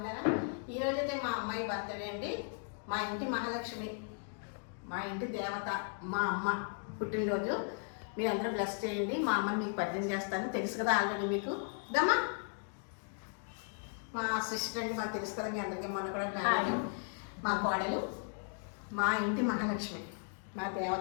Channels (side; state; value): right; silent; 54 dB below the other